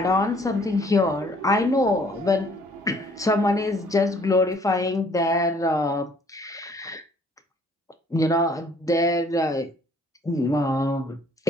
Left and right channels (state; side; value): normal; both; correlation 0.59